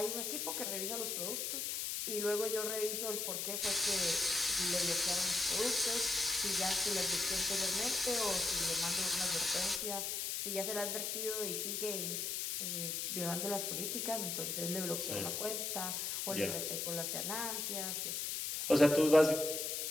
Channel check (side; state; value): left; noise; hiss, 1 dB below the sound